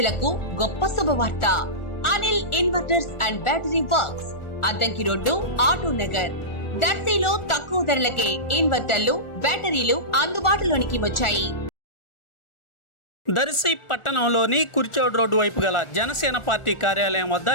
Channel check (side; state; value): right; late; 1.4 ms